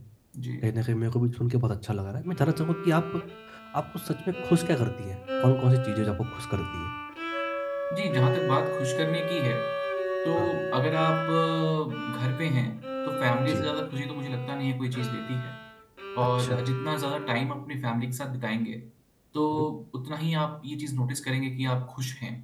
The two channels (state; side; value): identical; both; correlation 1.00